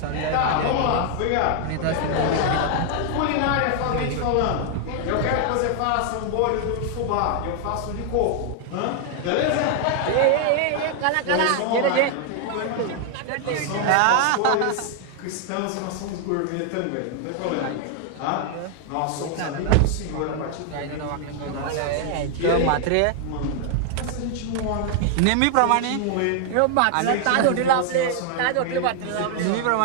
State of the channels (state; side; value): different; both; correlation 0.00